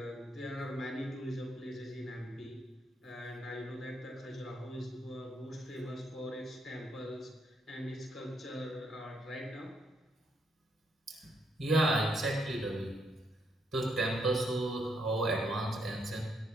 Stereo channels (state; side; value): normal; both; correlation 0.75